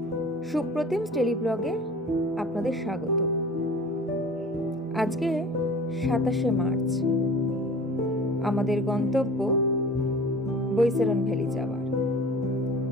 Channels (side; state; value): both; normal; correlation 0.42